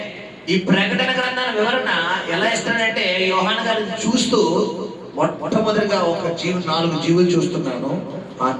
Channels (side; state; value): both; identical; correlation 1.00